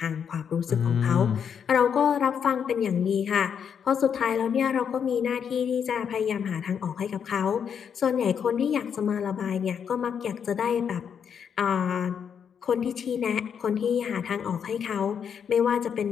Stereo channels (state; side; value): quieter; right; 7.5 dB